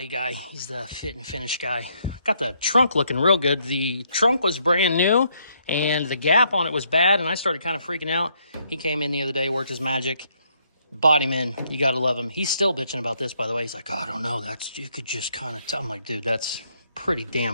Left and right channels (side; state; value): both; inverted; correlation -0.72